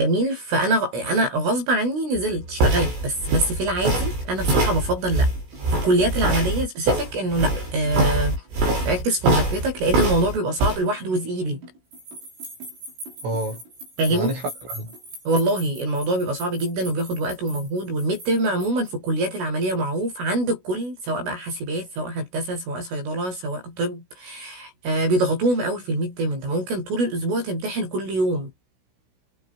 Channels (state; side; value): late; left; 16 ms